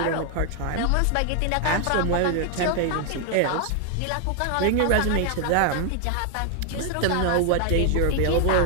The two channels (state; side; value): different; both; correlation 0.00